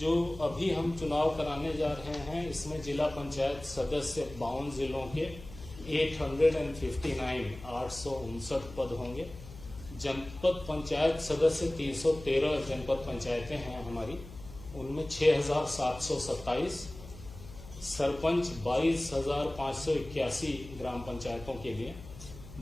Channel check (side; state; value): left; noise; hum, 16 dB below the sound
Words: अभी हम चुनाव कराने जा रहे हैं, इसमें जिला पंचायत सदस्य 52 जिलों के 859 पद होंगे। जनपद पंचायत सदस्य 313 जनपद पंचायतें हैं हमारी, उनमें 6,727, सरपंच 22,581 ग्राम पंचायतों के लिए